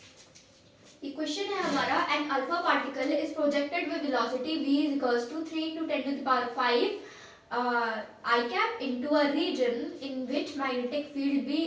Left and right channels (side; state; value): both; identical; correlation 1.00